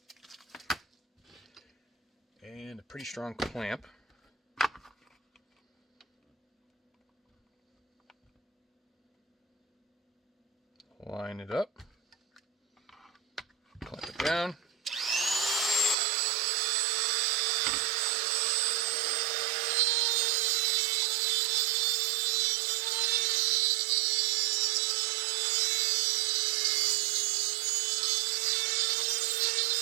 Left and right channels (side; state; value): left; drops out; at 16.0 s